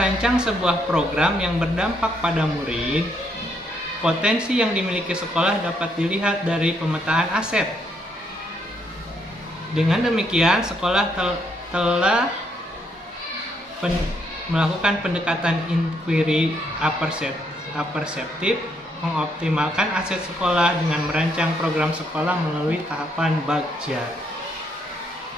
sebuah program yang berdampak pada murid, potensi yang dimiliki sekolah dapat dilihat dari pemetaan aset. Dengan demikian, sekolah telah melakukan pendekatan inquiry aperseptif, mengoptimalkan aset sekolah dengan merancang program sekolah melalui tahapan bagja.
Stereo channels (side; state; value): both; normal; correlation 0.74